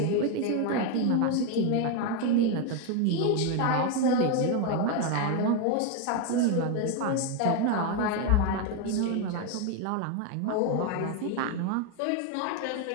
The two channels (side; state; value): both; different; correlation 0.02